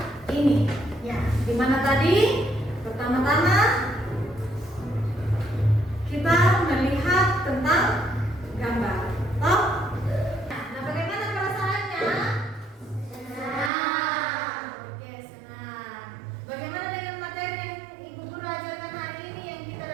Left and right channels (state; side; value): drops out; left; at 13.7 s